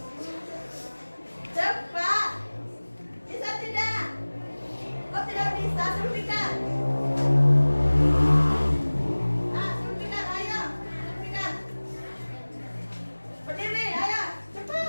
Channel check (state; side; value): inverted; both; correlation -1.00